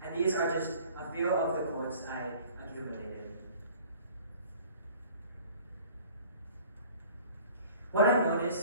And these are just a few of the quotes I accumulated. What I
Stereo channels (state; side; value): inverted; both; correlation -0.49